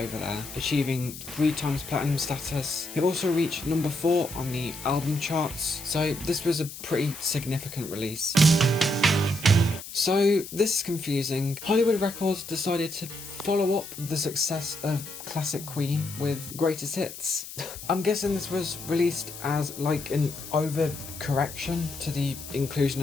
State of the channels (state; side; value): noise; left; hiss, 12 dB below the sound